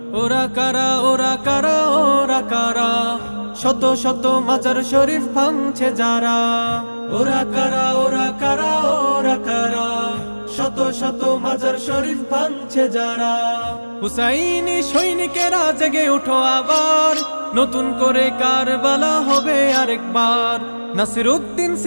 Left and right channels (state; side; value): inverted; both; correlation -1.00